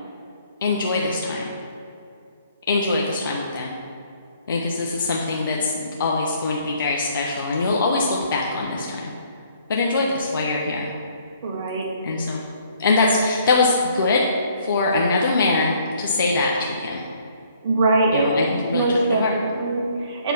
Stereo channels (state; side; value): inverted; both; correlation -0.62